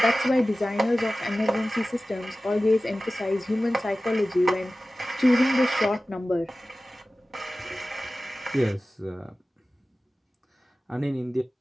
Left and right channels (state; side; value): normal; both; correlation 0.96